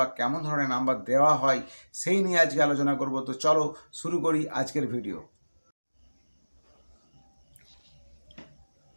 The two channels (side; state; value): both; inverted; correlation -1.00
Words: কেমন ধরনের নাম্বার দেওয়া হয় সেই নিয়ে আজকে আলোচনা করব। তো চলো শুরু করি আজকের ভিডিও।